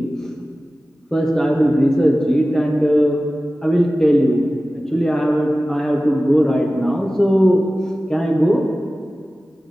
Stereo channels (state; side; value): normal; both; correlation 0.96